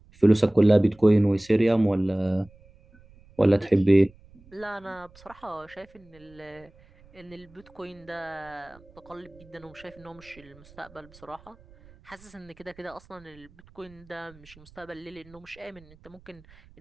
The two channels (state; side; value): noise; right; rumble, 26 dB below the sound